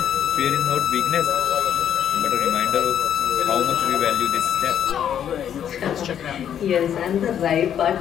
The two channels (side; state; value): right; quieter; 9.4 dB